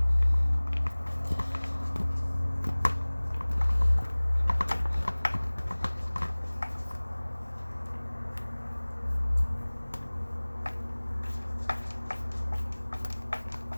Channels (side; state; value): both; inverted; correlation -1.00